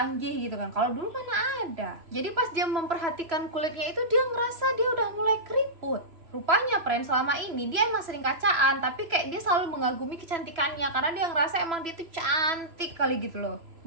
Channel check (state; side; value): late; left; 3.0 ms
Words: gitu kan. Kalau dulu mana ada. Jadi pas dia memperhatikan kulitnya itu, dia ngerasa dia udah mulai keriput. Rupanya, friend, selama ini dia emang sering kacaan, tapi kayak dia selalu mengagumi kecantikannya karena dia ngerasa emang dia tuh cantik kali gitu loh.